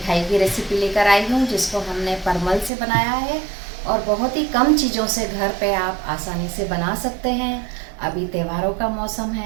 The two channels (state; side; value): drops out; left; at 2.7 s